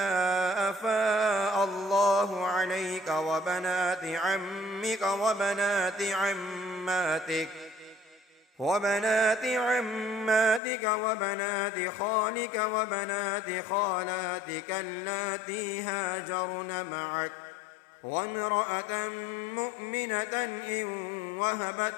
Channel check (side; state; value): right; drops out; at 10.6 s